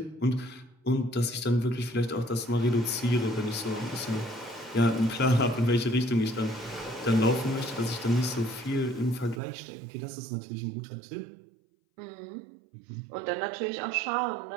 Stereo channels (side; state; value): left; drops out; at 9.4 s